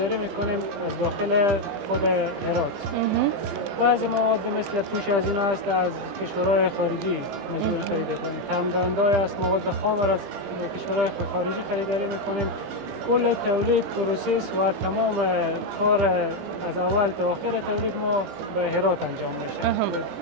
میکنیم از داخل خود هرات. بعضی مواد مثل پوش از اینا است از کشورهای خارجی مجبور خرید کنیم. تمام‌دهنده‌ای است مواد خام از کشورهای خارجی خریداری میکنیم. کل تولید پروسس و تمام کار از اول تا آخر تولید ما به هرات انجام میشه.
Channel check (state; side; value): late; left; 17 ms